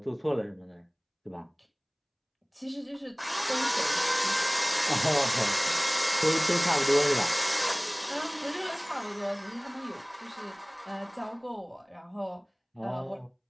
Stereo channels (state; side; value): identical; both; correlation 1.00